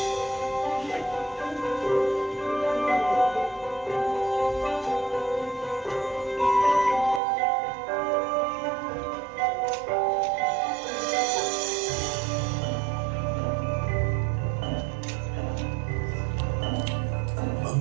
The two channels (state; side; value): drops out; left; at 7.2 s